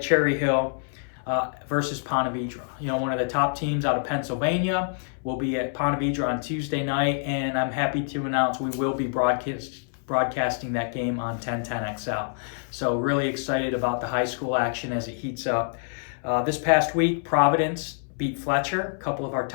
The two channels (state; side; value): silent; right; 61 dB below the other